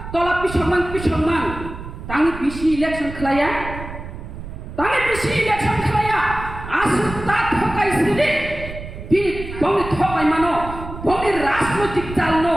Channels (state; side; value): noise; right; rumble, 10 dB below the sound